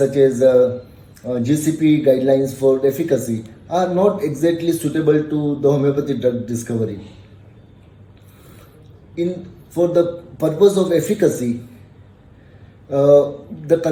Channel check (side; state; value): both; identical; correlation 1.00